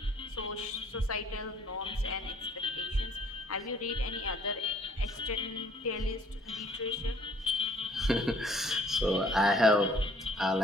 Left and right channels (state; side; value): normal; both; correlation 0.59